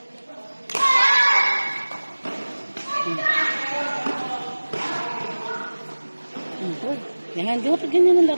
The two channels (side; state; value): both; inverted; correlation -1.00